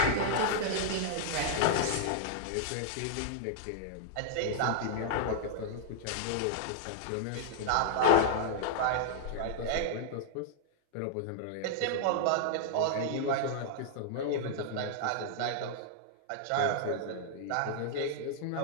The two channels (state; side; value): different; both; correlation -0.01